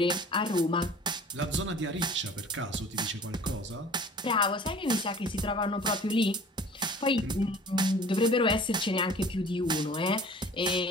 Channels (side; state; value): both; normal; correlation 0.46